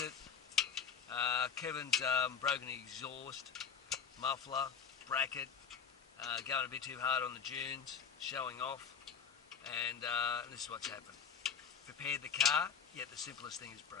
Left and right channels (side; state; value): right; quieter; 7.2 dB